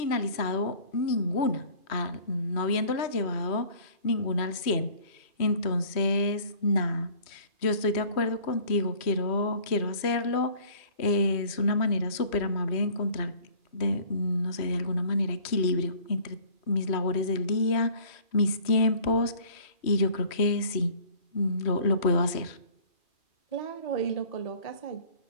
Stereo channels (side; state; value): right; late; 3.1 ms